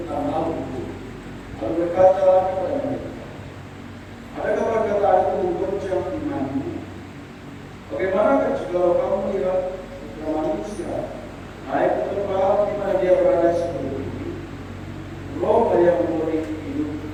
hal itu. Lalu berkata kepada mereka, "Adakah perkataan itu menggoncang imanmu? Bagaimana jika kamu melihat manusia naik ke tempat di mana dia berada sebelum ini? Roh yang memberi hidup,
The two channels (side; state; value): both; identical; correlation 1.00